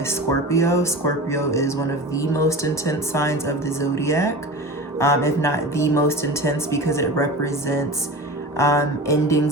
Scorpio. Scorpio is one of the most intense signs of the zodiac, if not the most intense, because it represents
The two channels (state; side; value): normal; both; correlation 0.32